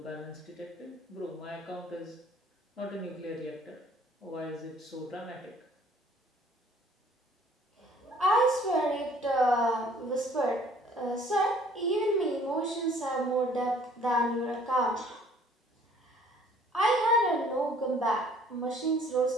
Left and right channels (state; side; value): normal; both; correlation 0.57